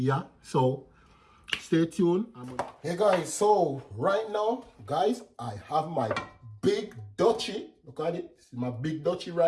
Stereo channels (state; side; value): identical; both; correlation 1.00